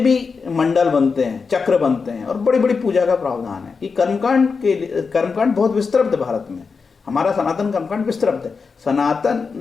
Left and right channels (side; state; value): right; quieter; 5.0 dB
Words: मंडल बनते हैं, चक्र बनते हैं, और बड़ी बड़ी पूजा का प्रावधान है। कि कर्मकांड बहुत विस्तृत है भारत में, हमारा सनातन कर्मकांड विस्तृत